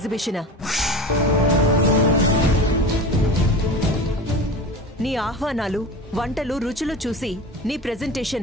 నీ ఆహ్వానాలు, వంటలు, రుచులు చూసి నీ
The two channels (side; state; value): both; normal; correlation 0.31